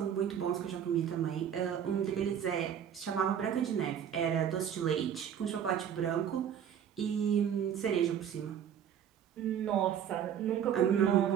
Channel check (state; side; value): quieter; left; 9.0 dB